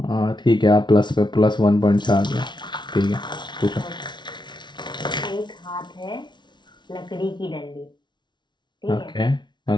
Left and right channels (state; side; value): late; right; 0.22 ms